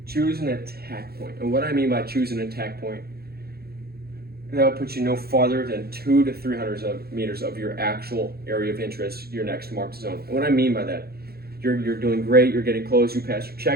choose an attack point. And what I mean by choose an attack point, that will put you no farther than 200 to 300 meters of your actual area of interest, your next marked zone. And what I mean by that, you're doing great, you're getting close, you passed your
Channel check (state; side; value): late; left; 0.45 ms